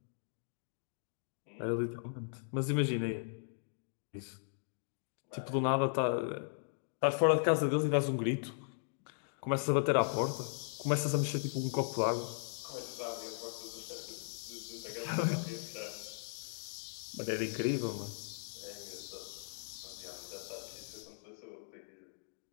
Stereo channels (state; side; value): silent; right; digital silence